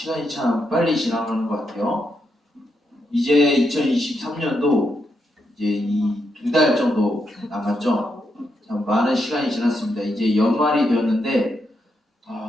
참 빨리 지나가는 것 같아요. 이제 2023년도 이제 이 2달 정도 남았죠. 참 많은 시간이 지났습니다. 이제 연말이 되었는데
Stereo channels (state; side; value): normal; both; correlation 0.81